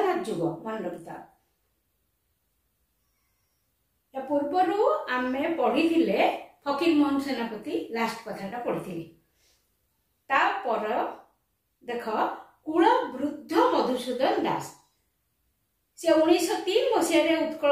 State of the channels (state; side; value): identical; both; correlation 1.00